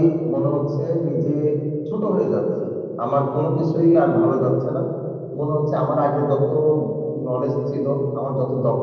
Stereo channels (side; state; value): both; identical; correlation 1.00